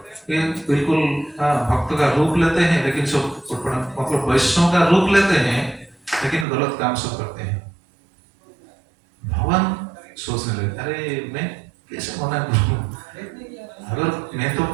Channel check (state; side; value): drops out; left; at 6.5 s